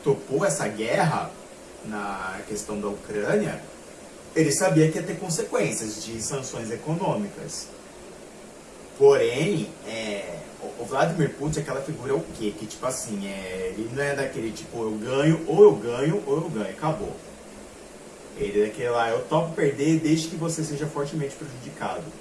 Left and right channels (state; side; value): identical; both; correlation 1.00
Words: topou essa guerra na questão da Ucrânia, ele sabia que ia ter consequências de sanções econômicas. Porém, o Vladimir Putin, aquela figura é o quê? Que tipo assim, ele não é daquele tipo, eu ganho, ou eu ganho, ou eu ganho, acabou. Ele é daquele lá, eu topo perder desde que você seja fortemente prejudicado.